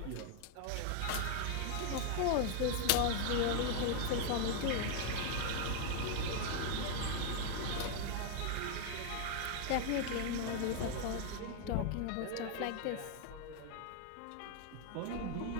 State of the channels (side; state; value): both; different; correlation 0.00